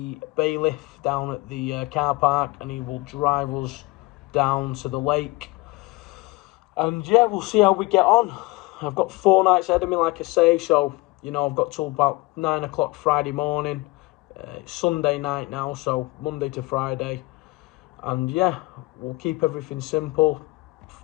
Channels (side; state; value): right; quieter; 22.7 dB